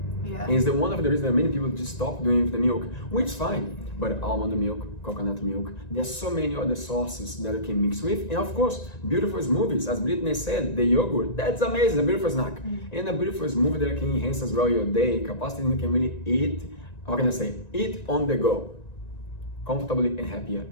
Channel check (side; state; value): right; late; 1.9 ms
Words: yeah. And it's one of the reasons that many people just stop doing it with the milk, which is fine. But almond milk, coconut milk, there's so many other sources that you can mix with. And of course, beautiful smoothies, as Brittney said, the yogurt, that's amazing, a beautiful snack. And a beautiful smoothie that can enhance as well your day capacity, and you can really eat, how can I say, eat on the go, comfortably and happier